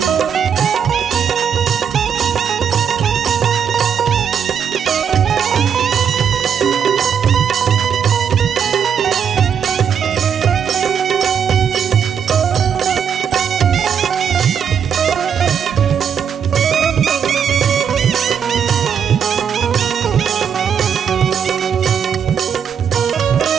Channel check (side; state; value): left; quieter; 7.7 dB